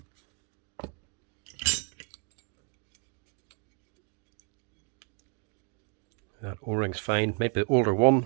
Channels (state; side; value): quieter; left; 37.4 dB